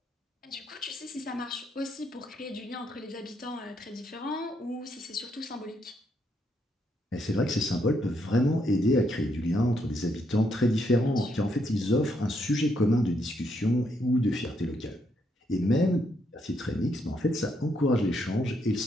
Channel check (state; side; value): normal; both; correlation 0.76